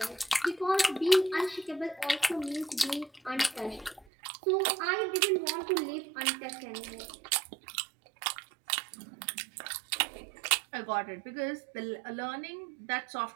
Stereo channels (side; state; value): left; drops out; at 4.0 s